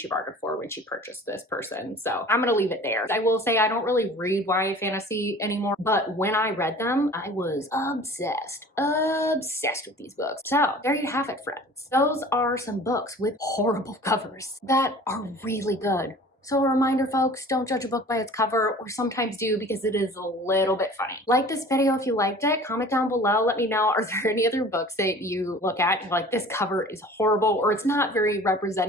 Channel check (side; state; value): both; normal; correlation 0.44